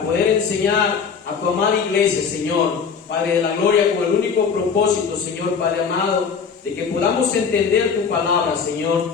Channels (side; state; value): right; quieter; 6.1 dB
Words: poder enseñar a tu amada iglesia, Señor, Padre de la gloria, con el único propósito, Señor, Padre amado, de que podamos entender tu palabra,